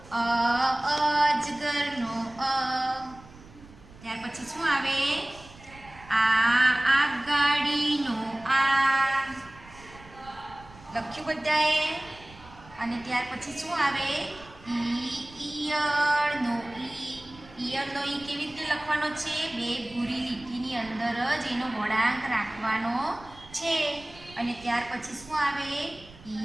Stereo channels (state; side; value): noise; right; rumble, 21 dB below the sound